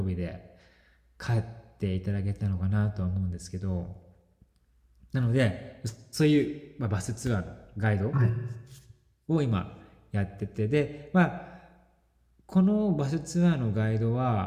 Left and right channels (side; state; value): both; identical; correlation 1.00